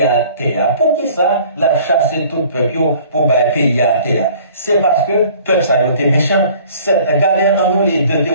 à terre. Pour qui ça, il a chassé tout peuple pour payer à terre? C'est parce que persaillot était méchant. Regardez en nous les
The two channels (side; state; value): both; inverted; correlation -0.51